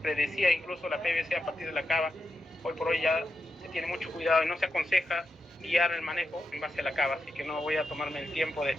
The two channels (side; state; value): both; normal; correlation 0.87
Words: incluso la PVC a partir de la cava. Hoy por hoy ya se tiene mucho cuidado y no se aconseja guiar el manejo en base a la cava, así que no voy a tomarme el tiempo de